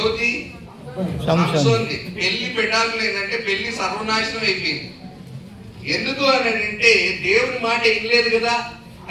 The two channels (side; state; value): both; identical; correlation 1.00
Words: సంసోన్ది పెళ్లి పెటాకులు ఏంటంటే పెళ్లి సర్వనాశనం అయిపోయింది. ఎందుకు అని అంటే దేవుని మాట వినలేదు కదా,